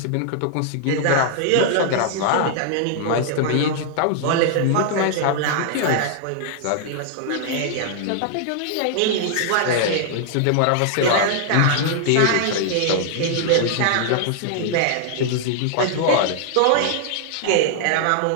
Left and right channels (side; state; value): both; different; correlation -0.01